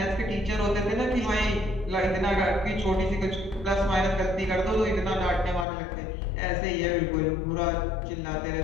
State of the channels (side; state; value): right; drops out; at 5.7 s